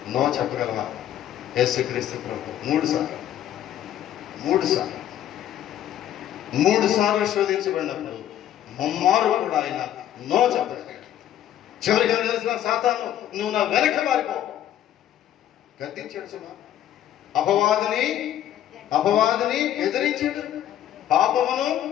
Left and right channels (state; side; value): quieter; right; 11.4 dB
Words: నో చెప్పగలవా? యేసుక్రీస్తు ప్రభు 3 సార్లు శోధించబడినప్పుడు ముమ్మారు కూడా ఆయన నో చెప్పగలిగాడు. చివరిగా తెలిసిన సాతాను నువ్వు నా వెనక మారిపో గద్దించాడు. సుమా అపవాదిని ఎదిరించాడు, పాపమును